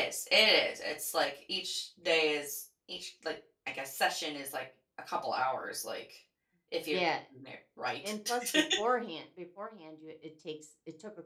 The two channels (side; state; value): both; identical; correlation 1.00